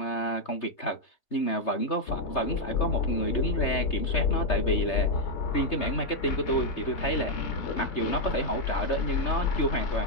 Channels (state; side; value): late; right; 3.3 ms